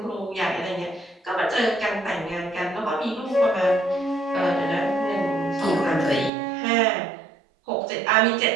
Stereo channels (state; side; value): drops out; left; at 6.3 s